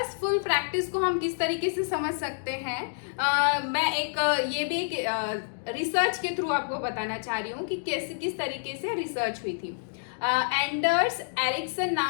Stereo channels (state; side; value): silent; right; digital silence